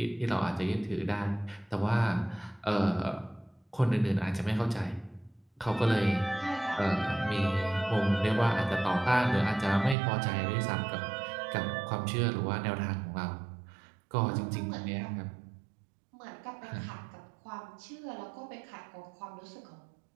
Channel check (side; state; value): left; drops out; at 10.0 s